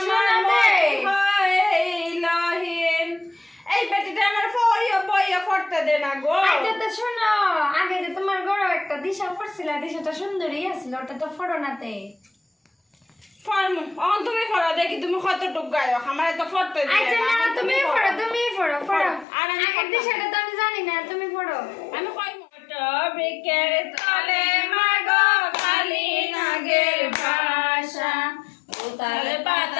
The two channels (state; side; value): drops out; right; at 19.2 s